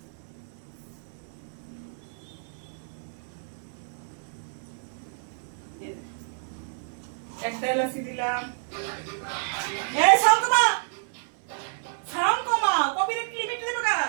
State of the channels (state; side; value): silent; left; 58 dB below the other